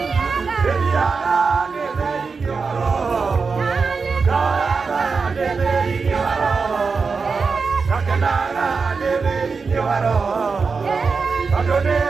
ĩthiaga nĩ thĩinĩ wa roho, kaoyaga nĩ thĩinĩ wa roho, gakenaga nĩ thĩinĩ wa roho, tondũ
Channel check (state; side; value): quieter; left; 4.8 dB